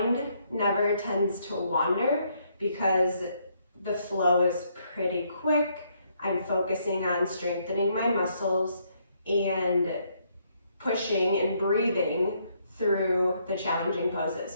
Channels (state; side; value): inverted; both; correlation -0.72